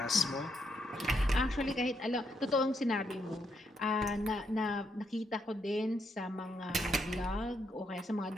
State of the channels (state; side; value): normal; both; correlation 0.77